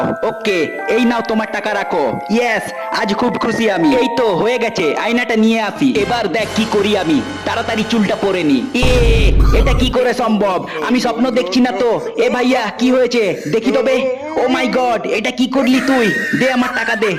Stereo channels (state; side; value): identical; both; correlation 1.00